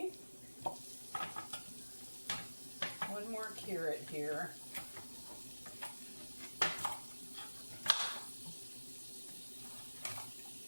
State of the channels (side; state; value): both; inverted; correlation -1.00